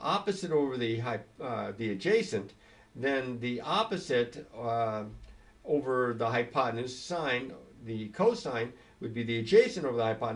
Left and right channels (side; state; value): both; identical; correlation 1.00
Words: over the adjacent, then the opposite over the hypotenuse, sine, the cosine, would be the adjacent over the